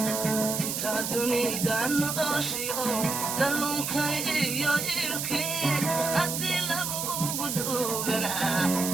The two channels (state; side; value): noise; right; hiss, 2 dB below the sound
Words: inta dunida noloshiyo dalluunkayo ilki haddii lagugu duugana